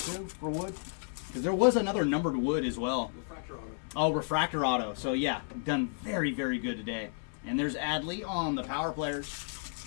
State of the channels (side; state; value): right; silent; 56 dB below the other